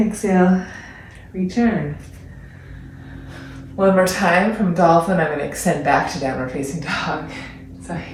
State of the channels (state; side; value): identical; both; correlation 1.00